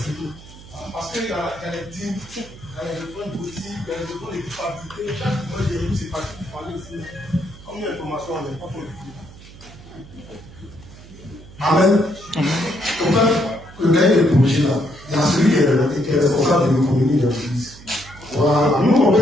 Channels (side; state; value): right; noise; hum, 19 dB below the sound